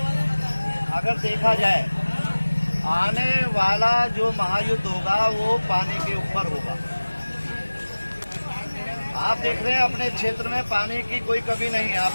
अगर देखा जाए आने वाला जो महायुद्ध होगा वो पानी के ऊपर होगा। आप देख रहे हैं अपने क्षेत्र में पानी की कोई कमी नहीं है,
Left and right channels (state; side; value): inverted; both; correlation -1.00